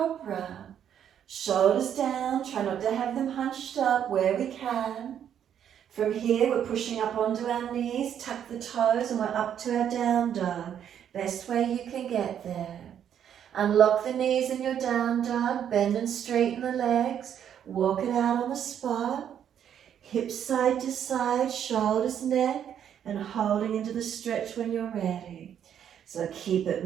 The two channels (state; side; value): quieter; left; 9.3 dB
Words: Shoulders down, try not to have them hunched up where we can. From here, we're pushing up onto our knees, tuck the toes, and we're up to our down dog. Best way you can get there. Unlock the knees in your down dog, bend and straighten the legs, walk it out on the spot. Hips side to side, shoulders, neck, and holding into the stretch when you're ready. So keep